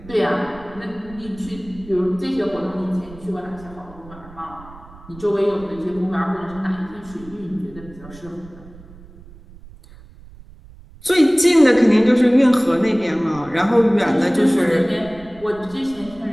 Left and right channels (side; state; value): right; noise; rumble, 20 dB below the sound